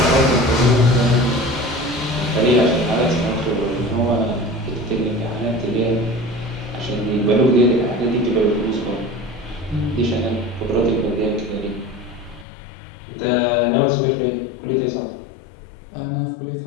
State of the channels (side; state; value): right; drops out; at 12.5 s